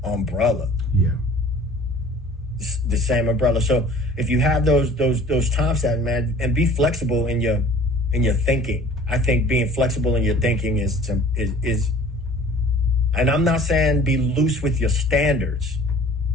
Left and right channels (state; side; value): normal; both; correlation 0.49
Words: umbrella. Yeah. The same umbrella. So if you have those time stamps, man, and be flexible in your thinking. I think being flexible in your thinking is, and I'm not saying be loose with your standards.